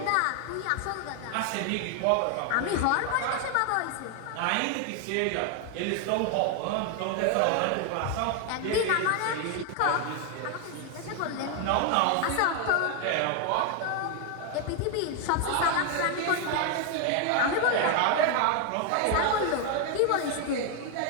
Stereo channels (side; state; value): both; different; correlation 0.01